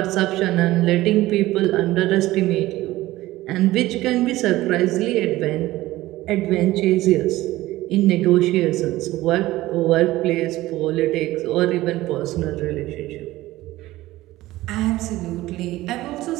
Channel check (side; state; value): left; quieter; 17.0 dB